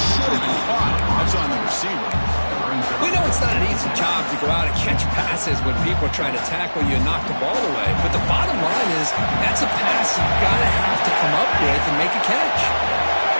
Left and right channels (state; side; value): inverted; both; correlation -1.00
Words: have been caught. That's on the receiver. We know it's not an easy job to go out and catch passes when people are trying to tackle you and knock the ball away. But the bottom line is that's a pass you've got to have to come up with and make a catch.